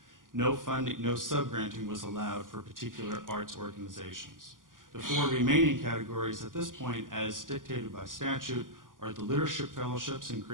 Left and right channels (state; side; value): late; left; 0.89 ms